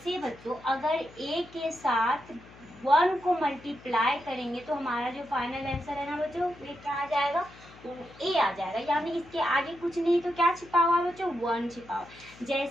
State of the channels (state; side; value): noise; left; hum, 21 dB below the sound